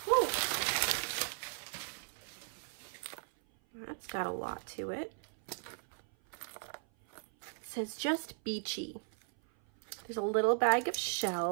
Whew. That's got a lot to it. It says just beachy. There's a little bag of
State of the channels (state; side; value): silent; left; 53 dB below the other